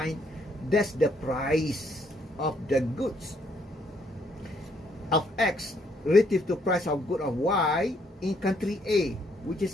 That's the price of the goods of X relative to price of good of Y in country A, which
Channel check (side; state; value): both; normal; correlation 0.70